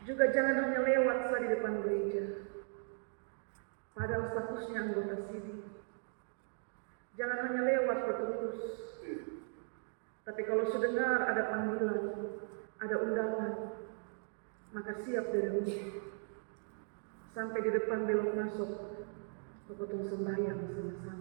juga jangan hanya lewat saat di depan gereja, padahal statusnya anggota sini. Jangan hanya lewat terus. Tapi kalau sudengar ada panggilan, ada undangan, maka siap dari rumah. Sampai di depan belok masuk, potong sembahyang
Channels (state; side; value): silent; left; 53 dB below the other